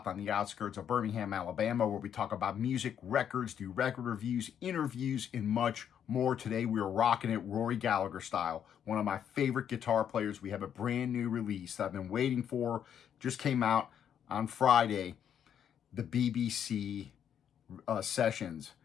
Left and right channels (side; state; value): right; quieter; 8.9 dB